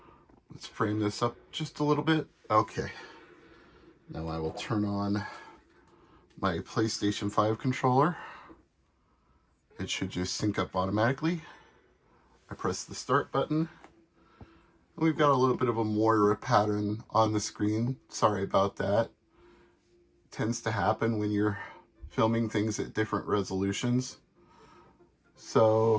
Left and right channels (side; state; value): both; identical; correlation 1.00